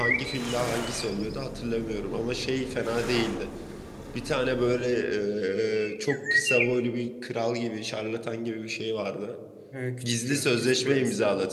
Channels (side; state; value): both; identical; correlation 1.00